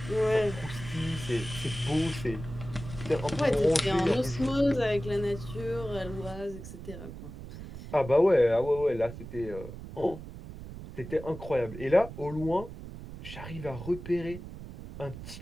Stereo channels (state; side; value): noise; right; rumble, 12 dB below the sound